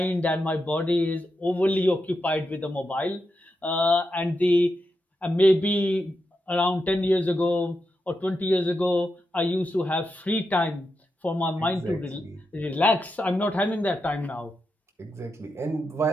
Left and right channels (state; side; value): normal; both; correlation 0.86